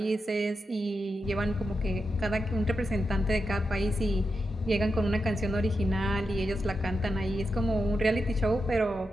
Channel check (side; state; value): both; normal; correlation 0.88